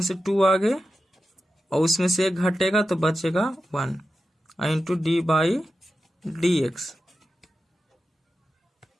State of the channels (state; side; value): normal; both; correlation 0.91